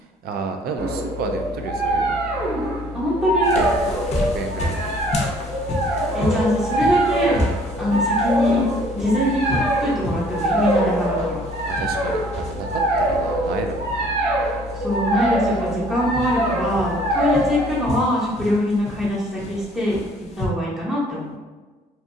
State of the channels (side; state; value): both; normal; correlation 0.57